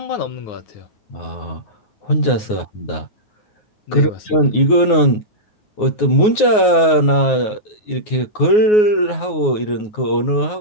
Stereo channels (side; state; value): right; late; 9.5 ms